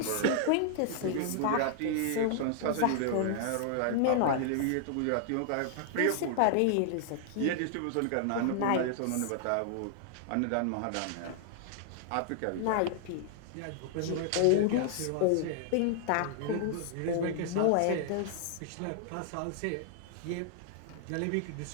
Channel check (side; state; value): both; different; correlation -0.01